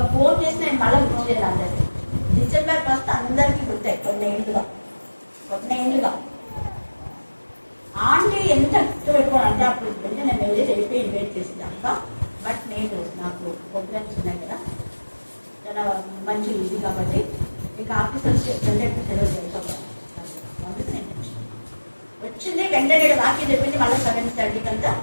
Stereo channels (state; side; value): inverted; both; correlation -1.00